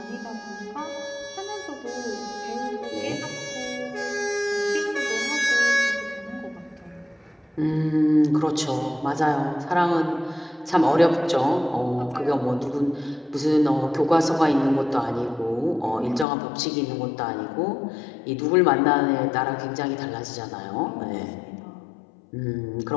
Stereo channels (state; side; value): drops out; right; at 16.2 s